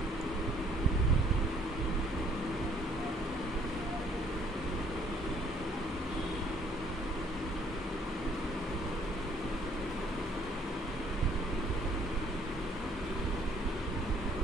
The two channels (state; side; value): normal; both; correlation 0.62